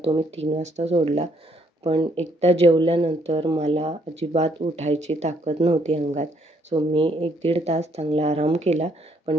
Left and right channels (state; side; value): normal; both; correlation 0.69